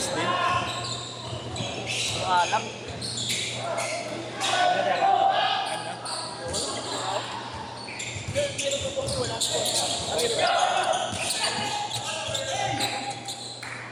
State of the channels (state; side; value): identical; both; correlation 1.00